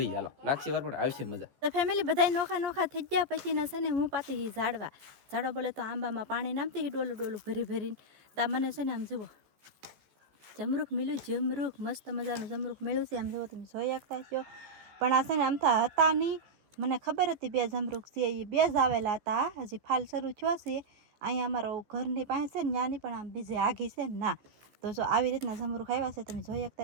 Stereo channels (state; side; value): late; left; 15 ms